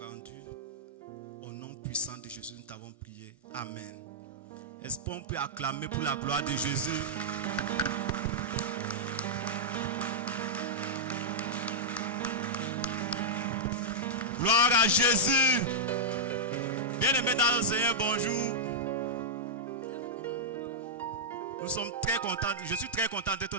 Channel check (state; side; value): normal; both; correlation -0.08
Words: rendue. Au nom puissant de Jésus, nous t'avons prié. Amen. Est-ce qu'on peut acclamer pour la gloire de Jésus? Gloire à Jésus. Bien-aimés dans le Seigneur, bonjour. Nous sommes très contents. Je suis très content d'être